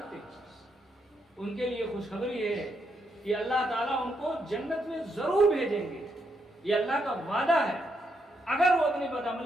ہیں، ان کے لیے خوشخبری ہے کہ اللہ تعالیٰ ان کو جنت میں ضرور بھیجیں گے، یہ اللہ کا وعدہ ہے۔ اگر وہ اپنی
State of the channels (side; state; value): both; normal; correlation 0.79